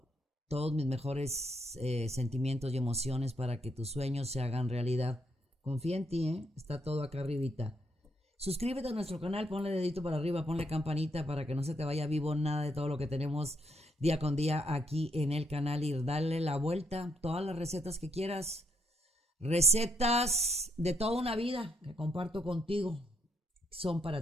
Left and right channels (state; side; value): normal; both; correlation 0.75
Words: todos mis mejores sentimientos y emociones para que tus sueños se hagan realidad. Confía en ti, está todo acá arribita. Suscríbete a nuestro canal, ponle dedito para arriba, ponle campanita para que no se te vaya vivo nada de todo lo que tenemos día con día aquí en el canal y darle la vuelta. Todas las recetas que quieras, recetas de toda una vida que comparto contigo, son